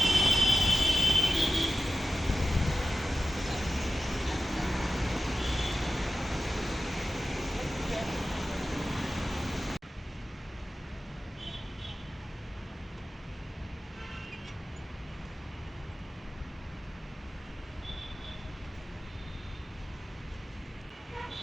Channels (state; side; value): normal; both; correlation 0.93